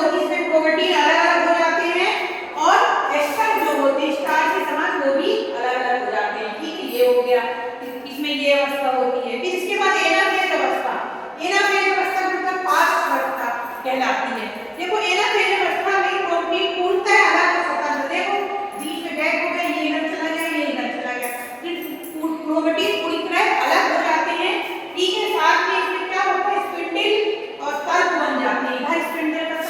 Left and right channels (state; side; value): identical; both; correlation 1.00